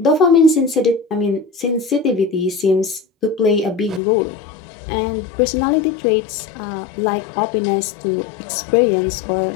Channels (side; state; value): right; drops out; at 4.0 s